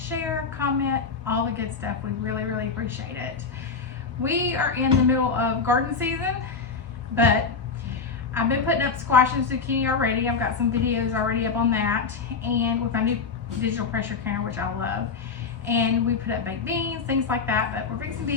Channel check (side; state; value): right; quieter; 5.1 dB